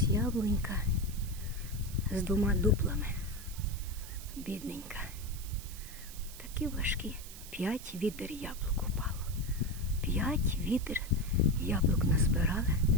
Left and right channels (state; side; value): noise; right; hiss, 14 dB below the sound